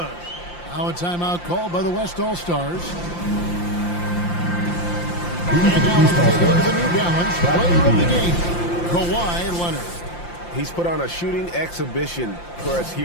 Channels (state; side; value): late; right; 5.8 ms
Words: Now a timeout called by the West All-Stars. And now let's take a look at the New Balance player of the game, Kawhi Leonard. He's put on a shooting exhibition for us